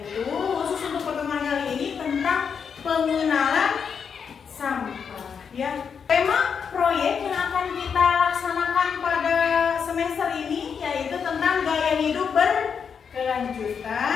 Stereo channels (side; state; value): right; quieter; 6.6 dB